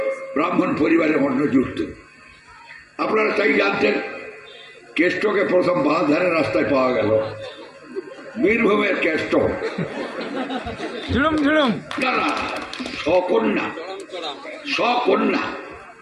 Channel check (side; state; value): both; identical; correlation 1.00